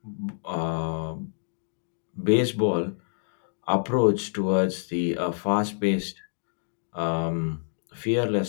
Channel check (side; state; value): right; silent; digital silence